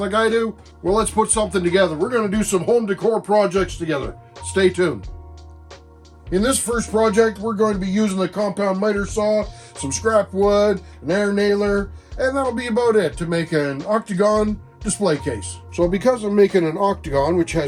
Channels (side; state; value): both; identical; correlation 1.00